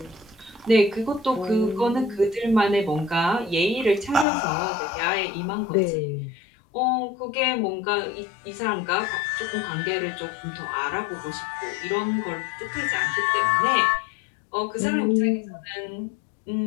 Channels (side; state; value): right; drops out; at 4.2 s